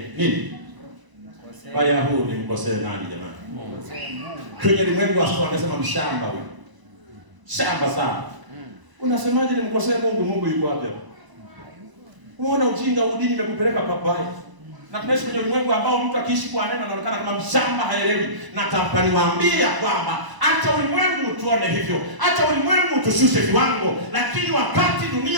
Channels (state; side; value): late; left; 1.0 ms